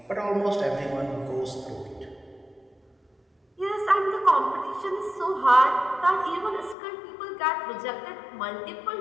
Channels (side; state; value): right; drops out; at 6.8 s